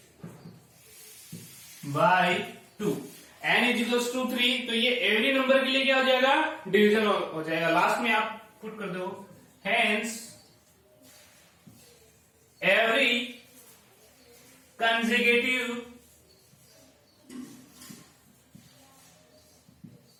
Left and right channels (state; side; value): identical; both; correlation 1.00